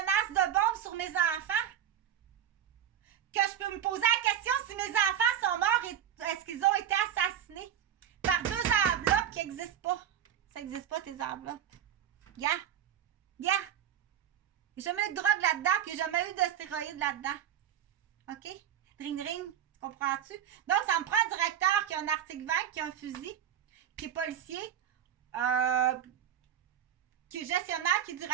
de bombes sur mes enfants. Que je peux me poser la question si mes enfants sont morts et est-ce qu'ils ont été assassinés par deux enveloppes qui n'existent pas. Ça n'existe pas, tes enveloppes. Il n'y a jamais eu de drogue là-dedans, puis il n'y a jamais eu de stéroïdes là-dedans. OK? Ring, ring. Tu comprends-tu? Donc, ça me prend un directeur qui a un article 20, qui a un fusil, qui est policier, qui est gestionnaire, qui est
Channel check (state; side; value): quieter; left; 9.7 dB